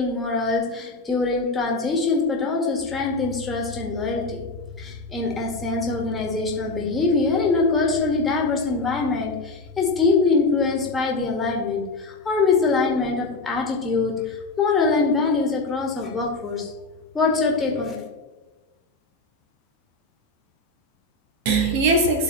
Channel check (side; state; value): right; quieter; 3.1 dB